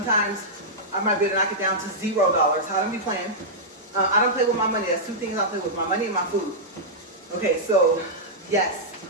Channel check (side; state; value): both; normal; correlation -0.10